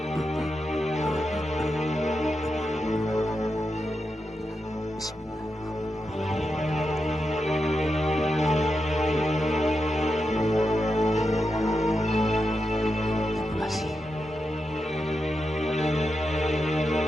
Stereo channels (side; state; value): both; normal; correlation 0.87